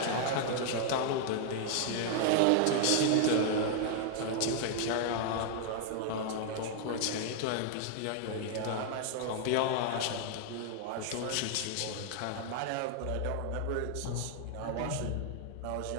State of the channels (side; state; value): both; different; correlation -0.01